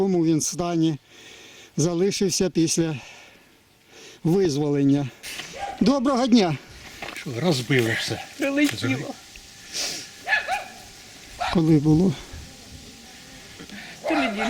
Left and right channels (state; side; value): identical; both; correlation 1.00